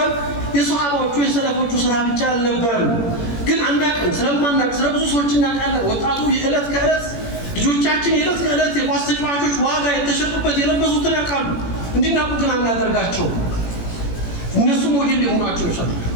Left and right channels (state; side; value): late; right; 17 ms